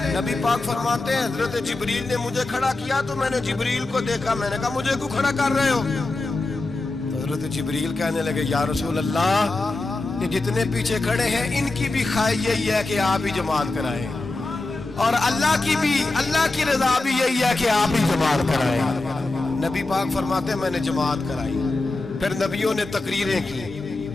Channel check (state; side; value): quieter; right; 3.1 dB